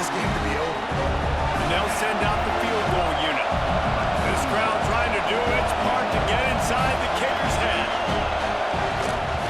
game to be over. And they'll send out the field goal unit. This crowd trying to do its part to get inside the kicker's head.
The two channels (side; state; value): both; identical; correlation 1.00